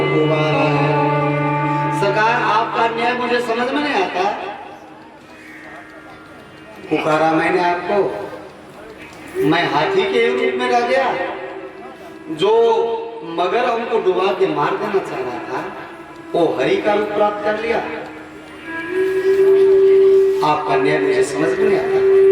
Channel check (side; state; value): both; identical; correlation 1.00